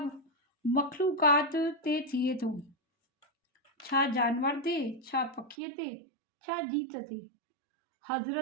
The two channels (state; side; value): drops out; left; at 5.6 s